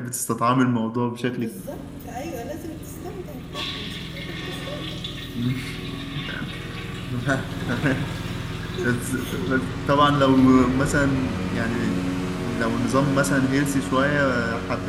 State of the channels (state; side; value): identical; both; correlation 1.00